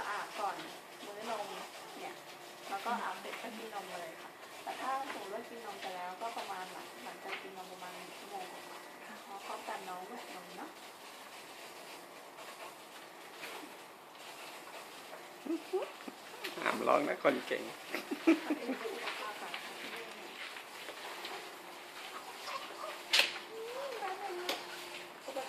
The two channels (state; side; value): identical; both; correlation 1.00